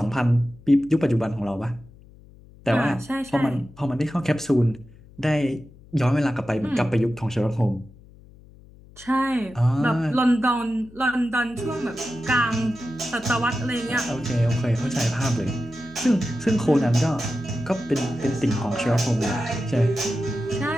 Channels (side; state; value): left; noise; hum, 23 dB below the sound